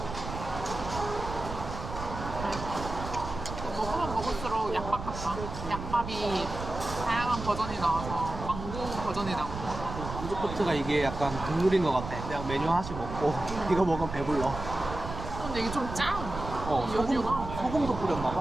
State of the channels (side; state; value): right; noise; rumble, 8 dB below the sound